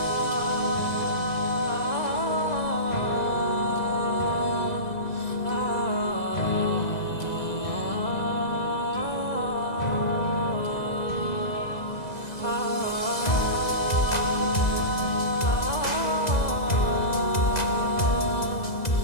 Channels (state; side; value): late; right; 2.0 ms